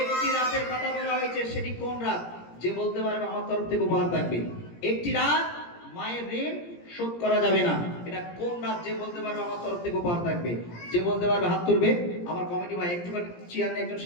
রাতের কথা বলা হয়েছে, সেটি কোন রাত? যে বলতে পারবে আমার তরফ থেকে উপহার থাকবে। একটি রাত মায়ের ঋণ শোধ করা যাবে না, এটা কোন রাত? যে বলতে পারবে আমার তরফ থেকে উপহার থাকবে। যে বলতে পারবে হাত তুলবে। আমার কমিটি ভাই একটুখানি চেয়ার নিয়ে একজন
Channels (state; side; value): late; right; 17 ms